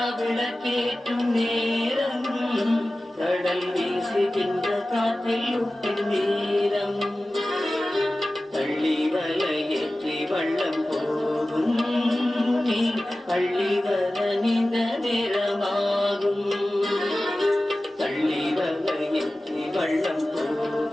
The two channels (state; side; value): normal; both; correlation 0.96